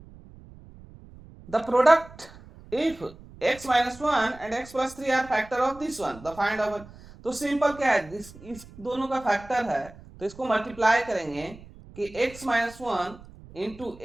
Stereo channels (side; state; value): right; noise; rumble, 20 dB below the sound